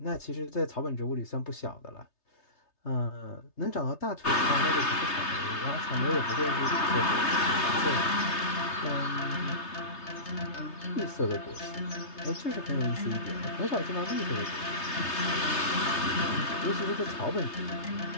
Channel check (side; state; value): right; late; 3.3 ms